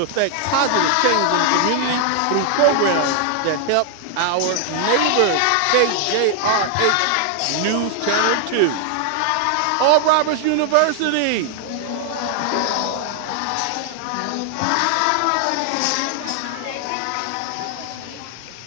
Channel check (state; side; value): different; both; correlation 0.00